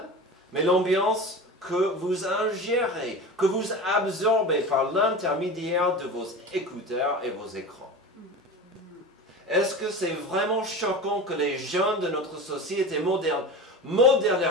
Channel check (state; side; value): normal; both; correlation 0.31